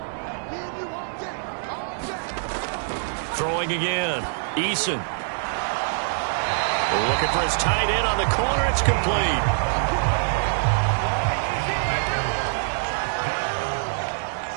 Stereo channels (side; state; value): left; silent; 62 dB below the other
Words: Throwing again. Eason. Looking for his tight end on the corner. It's complete.